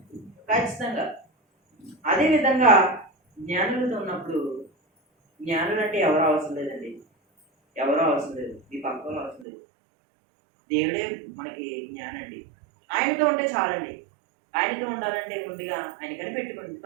ఖచ్చితంగా. అదేవిధంగా జ్ఞానులతో ఉన్నప్పుడు, జ్ఞానులు అంటే ఎవరు అవసరం లేదండి, ఎవరో అవసరం లేదు, ఈ పక్కలో అవసరం లేదు. దేవుడే మనకి జ్ఞానండి. ఆయనతో ఉంటే చాలండి. ఆయనతో ఉండాలంటే ముందుగా ఆయన కనిపెట్టుకోండి.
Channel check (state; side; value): drops out; left; at 9.5 s